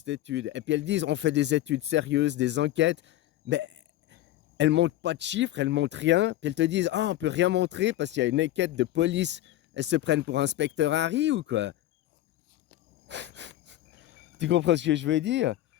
étude? Et puis elles disent, on fait des études sérieuses, des enquêtes, mais elles montrent pas de chiffres, elles montrent rien. Puis elles te disent, ah, on peut rien montrer parce qu'il y a une enquête de police. Elles se prennent pour inspecteur Harry ou quoi? Tu comprends ce que je veux dire?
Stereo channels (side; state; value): right; quieter; 14.3 dB